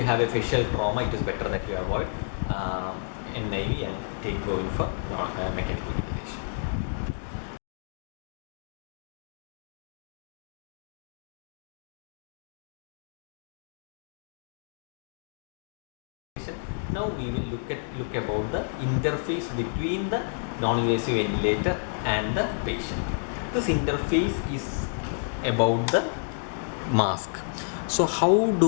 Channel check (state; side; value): silent; right; digital silence